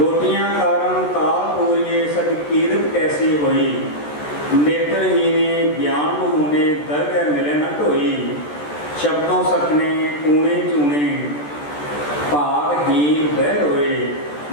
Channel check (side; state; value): right; late; 14 ms